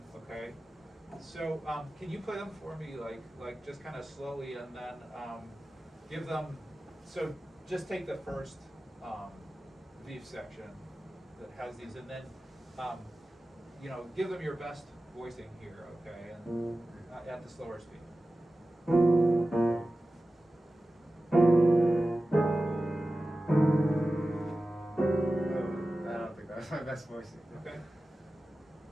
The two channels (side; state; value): both; normal; correlation 0.95